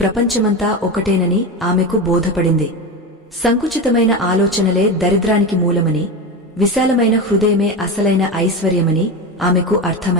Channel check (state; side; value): normal; both; correlation 0.20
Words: ప్రపంచమంతా ఒకటేనని ఆమెకు బోధపడింది. సంకుచితమైన ఆలోచనలే దరిద్రానికి మూలమని, విశాలమైన హృదయమే అసలైన ఐశ్వర్యమని ఆమెకు